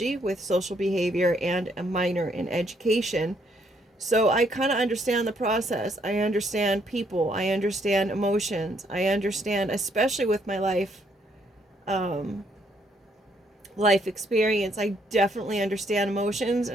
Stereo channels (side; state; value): both; normal; correlation 0.70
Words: with social behavior and a minor in education. So I kind of understand the process. I understand people. I understand emotions. I understand, especially with my life experience, I definitely understand emotions,